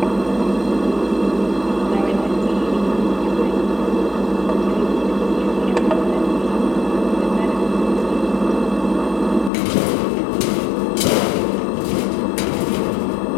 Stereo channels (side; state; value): right; drops out; at 9.5 s